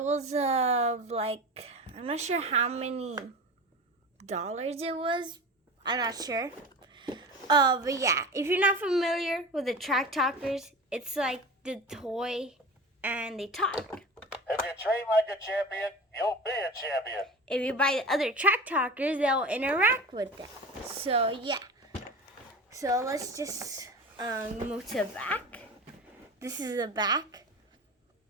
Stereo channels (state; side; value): normal; both; correlation 0.32